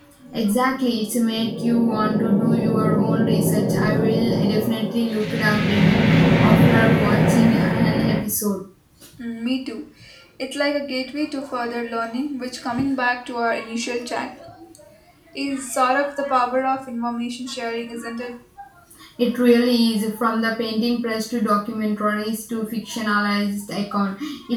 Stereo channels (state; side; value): identical; both; correlation 1.00